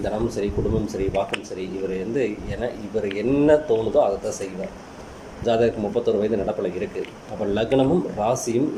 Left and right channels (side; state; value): both; identical; correlation 1.00